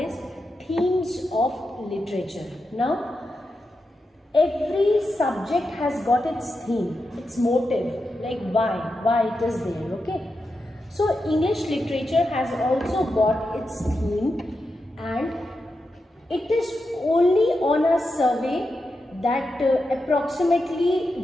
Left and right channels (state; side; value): normal; both; correlation 0.88